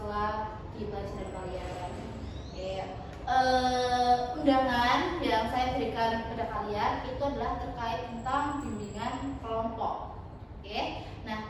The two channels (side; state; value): both; identical; correlation 1.00